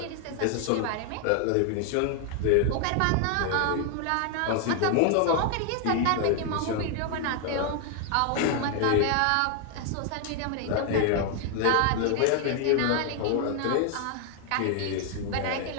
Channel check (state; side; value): different; both; correlation 0.00